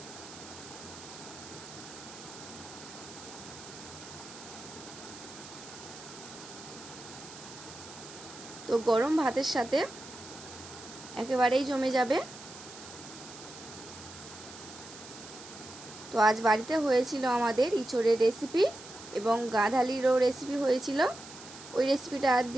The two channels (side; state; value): right; noise; hiss, 15 dB below the sound